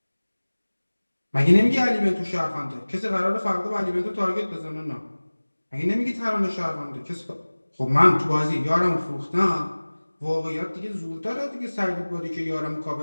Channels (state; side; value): inverted; both; correlation -1.00